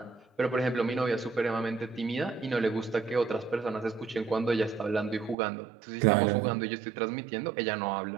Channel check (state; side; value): drops out; left; at 5.4 s